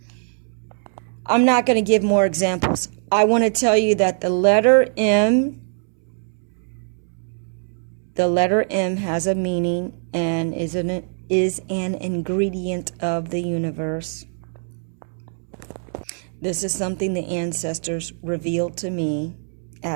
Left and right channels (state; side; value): silent; left; 64 dB below the other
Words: I'm not going to give more examples. I want to tell you that the letter M has a meaning and is an ingredient of the universe. This is something the ancestors revealed to me